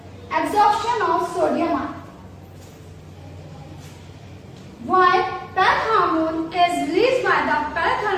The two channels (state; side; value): identical; both; correlation 1.00